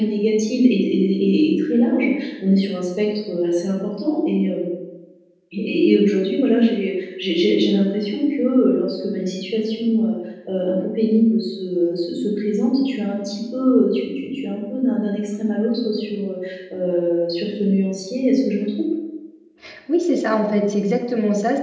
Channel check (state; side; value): identical; both; correlation 1.00